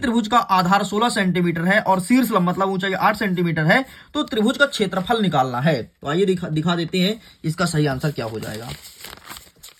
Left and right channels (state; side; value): identical; both; correlation 1.00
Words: का आधार 16 सेंटीमीटर है और शीर्ष लंब मतलब ऊंचाई 8 सेंटीमीटर है, तो त्रिभुज का क्षेत्रफल निकालना है। तो आइए दिखा देते हैं इसका सही आंसर क्या हो जाएगा।